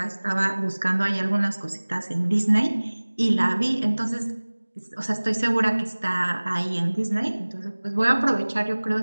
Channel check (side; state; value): both; inverted; correlation -1.00